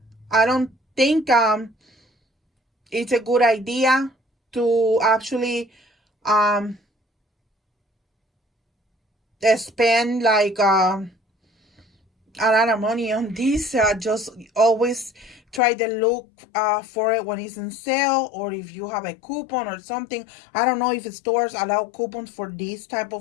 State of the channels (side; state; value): right; drops out; at 15.6 s